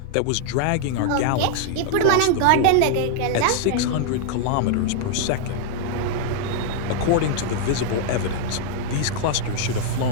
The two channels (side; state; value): both; different; correlation -0.01